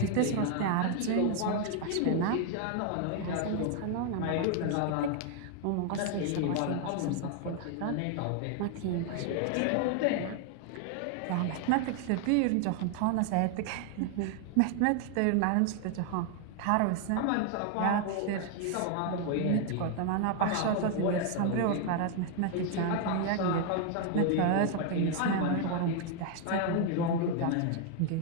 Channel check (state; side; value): different; both; correlation 0.00